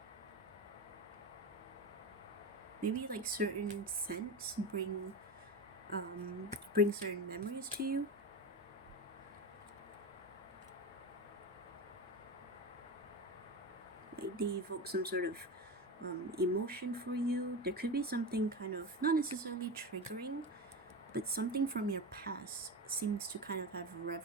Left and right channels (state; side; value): normal; both; correlation 0.22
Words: Maybe like certain scents bring certain memories to you. Like they evoke some sort of emotion for you. There could be something kind of not necessarily triggering, but something from your past seems to kind of have